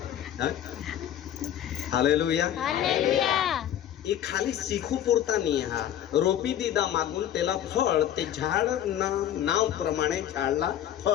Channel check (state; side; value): quieter; right; 10.9 dB